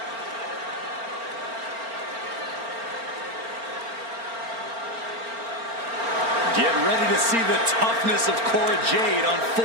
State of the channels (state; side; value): late; left; 4.4 ms